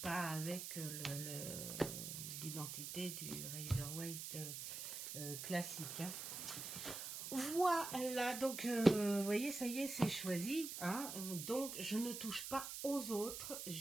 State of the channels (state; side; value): noise; right; hiss, 6 dB below the sound